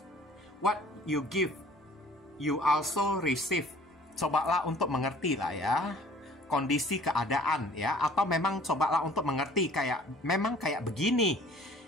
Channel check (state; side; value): normal; both; correlation 0.51